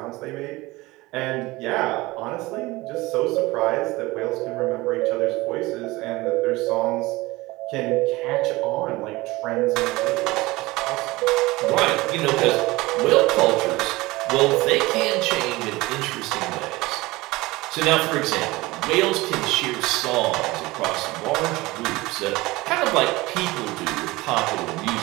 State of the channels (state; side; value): quieter; left; 20.8 dB